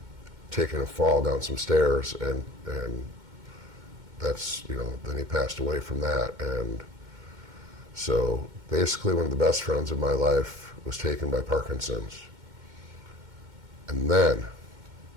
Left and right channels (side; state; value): left; late; 2.1 ms